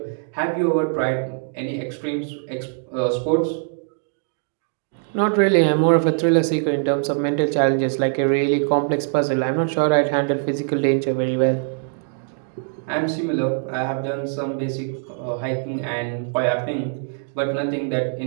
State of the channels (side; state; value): left; silent; 64 dB below the other